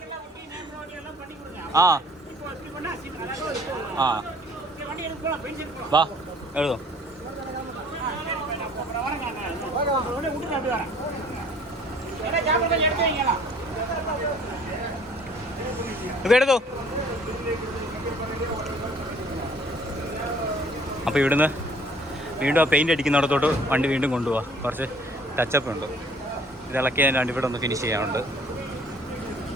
ആ ആ വാ എഴുതോ. ഇതെടുത്തോ. അപ്പോൾ ഇവിടുന്ന് വീണ്ടും ആ പെയിൻ്റ് അടിക്കുന്നിടത്തോട്ട് വണ്ടി വീണ്ടും കൊണ്ടുപോവാം. കുറച്ച് ടച്ചപ്പ് ഉണ്ട്. ഇത് ഇളക്കിയതിനാണ്ട് ഇവിടെ ഒന്ന് ഫിനിഷ് ചെയ്യാനുണ്ട്.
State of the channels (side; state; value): both; normal; correlation 0.56